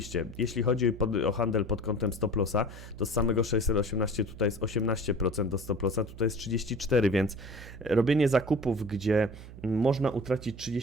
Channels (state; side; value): noise; right; hum, 15 dB below the sound